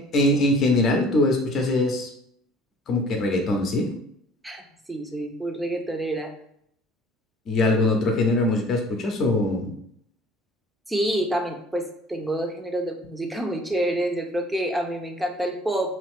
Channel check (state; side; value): normal; both; correlation 0.51